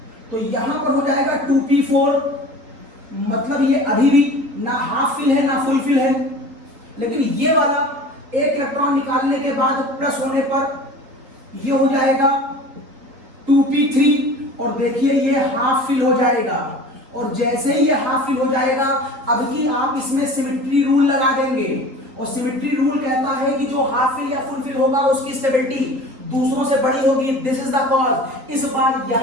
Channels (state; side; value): late; left; 3.8 ms